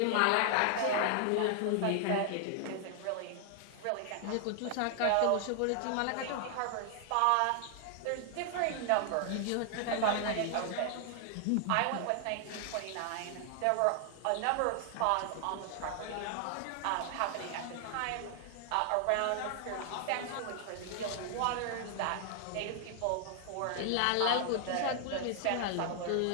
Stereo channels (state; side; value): different; both; correlation 0.00